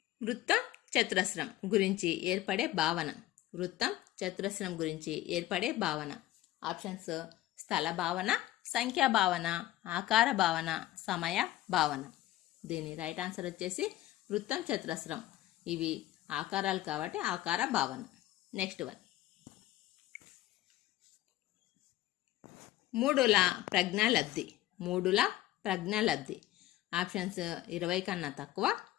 వృత్తం చతురస్రం గురించి ఏర్పడే భావన. వృత్తం చతురస్రం గురించి ఏర్పడే భావన. ఆప్షన్స్ స్థల భావన, సంఖ్యా భావన, ఆకార భావన, సమయ భావన. దీని రైట్ ఆన్సర్ వచ్చేసి వృత్తం చతురస్రం. ఇవి ఆకారాలు కాబట్టి ఆకార భావన. నెక్స్ట్ వన్ మూడుల ప్రజ్ఞాలబ్ధి. మూడుల ప్రజ్ఞాలబ్ధి. ఆప్షన్స్ 20 కన్నా తక్కువ,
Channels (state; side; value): quieter; right; 15.3 dB